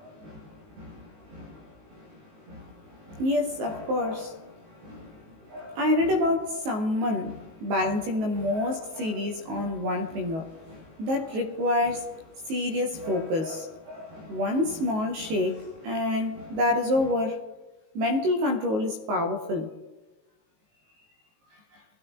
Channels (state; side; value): late; left; 19 ms